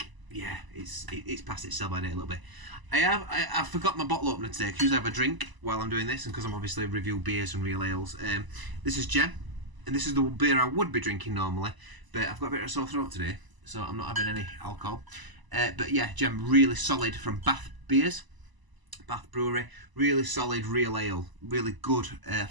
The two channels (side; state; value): left; late; 1.0 ms